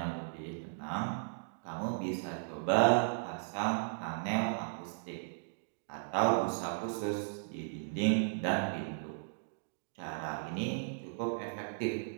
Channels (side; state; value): left; silent; digital silence